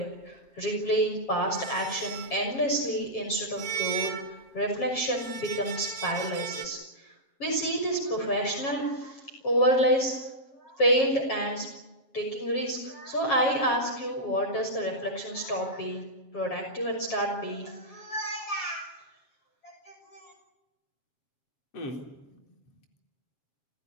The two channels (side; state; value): right; late; 7.3 ms